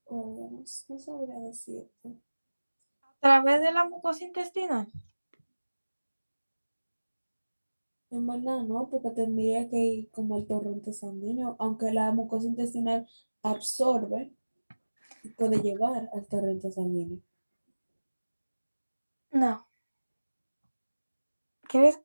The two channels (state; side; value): inverted; both; correlation -1.00